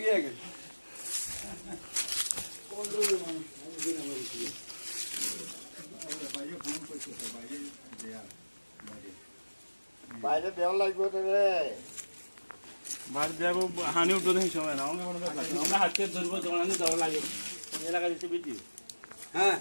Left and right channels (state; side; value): inverted; both; correlation -1.00